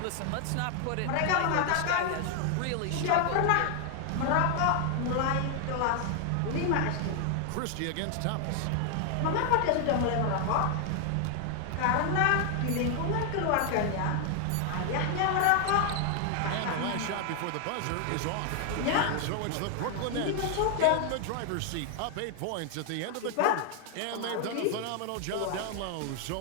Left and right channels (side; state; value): both; different; correlation 0.00